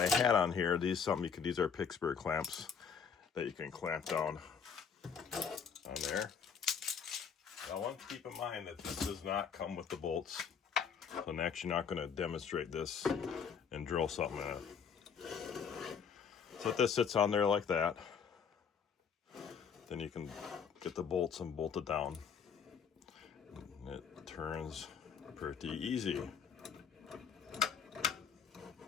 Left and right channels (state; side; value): quieter; right; 6.7 dB